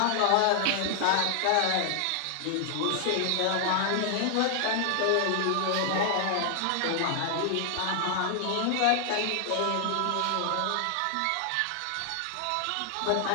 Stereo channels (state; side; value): different; both; correlation 0.00